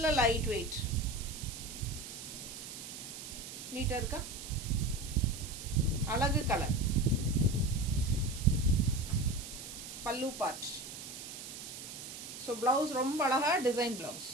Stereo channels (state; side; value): noise; right; hiss, 10 dB below the sound